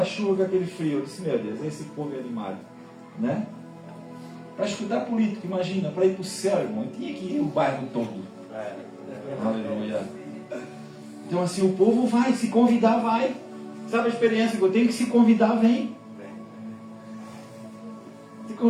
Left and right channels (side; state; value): both; identical; correlation 1.00